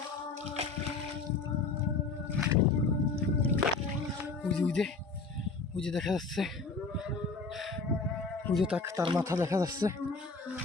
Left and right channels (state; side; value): quieter; right; 4.2 dB